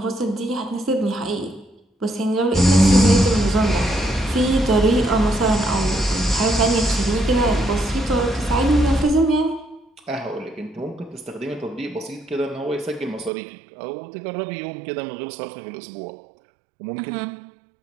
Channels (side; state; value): left; drops out; at 13.3 s